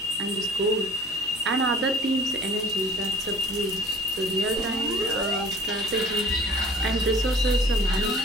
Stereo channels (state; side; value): normal; both; correlation 0.47